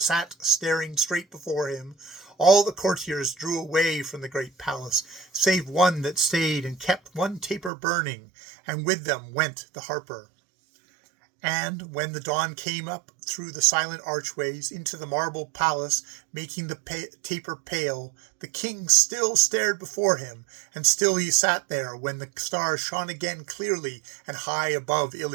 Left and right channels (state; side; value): drops out; left; at 7.7 s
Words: straight before him, all the courtiers drew away from the great palace, save one that stayed and kept one taper burning, and with them went the harper. And when the dawn came up through the silent archways into the marble palace, making the taper pale, the king still stared before him, and still he sat there when the stars shone again clearly and high above